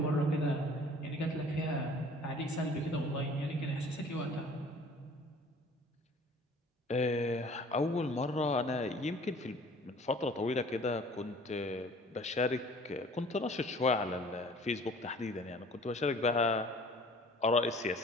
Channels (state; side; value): normal; both; correlation 0.50